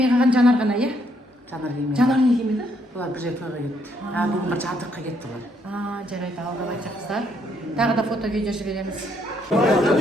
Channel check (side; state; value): both; normal; correlation 0.72